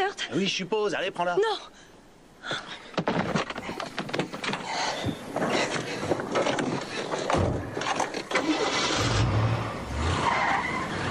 Oui, je suppose. Allez, prends-la. Non!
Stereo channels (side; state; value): both; identical; correlation 1.00